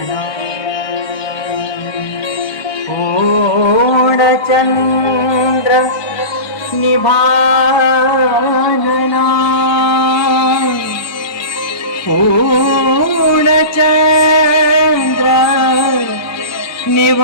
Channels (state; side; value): late; right; 1.2 ms